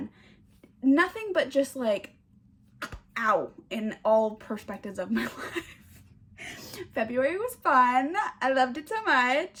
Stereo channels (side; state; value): both; identical; correlation 1.00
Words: nothing but just like, ow, in all perspectives of my life. February was fun. I loved it so